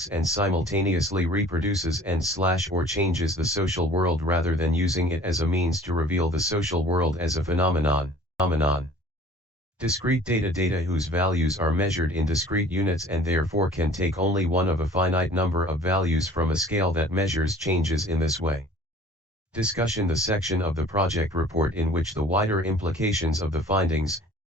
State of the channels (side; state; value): both; normal; correlation 0.49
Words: and simultaneously reproduces and/or changes the social world rather than using it as a means to reveal the social world as a phenomenon. Discrete data, data whose values are measured in discrete units and therefore can take only one of a finite number of values from a scale that measures changes in this way. Discussion, the section of the project report in which the wider implications of the findings